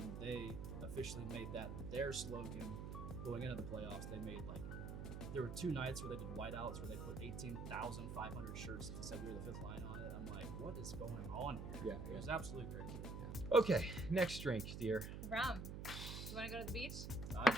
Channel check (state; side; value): noise; right; hum, 6 dB below the sound